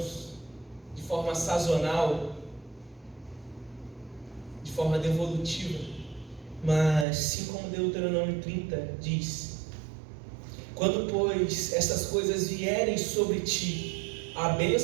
de forma sazonal, de forma devolutiva, mas sim como Deuteronômio 30 diz: quando, pois, essas coisas vierem sobre ti, a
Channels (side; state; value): left; drops out; at 7.1 s